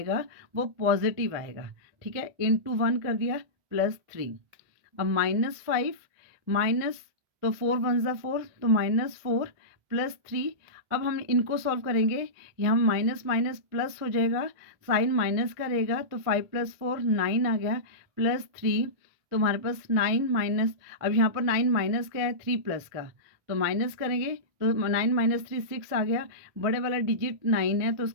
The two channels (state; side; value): late; left; 1.6 ms